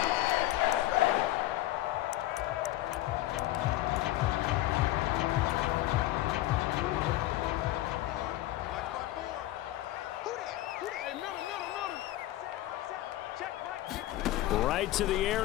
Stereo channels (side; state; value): right; quieter; 15.7 dB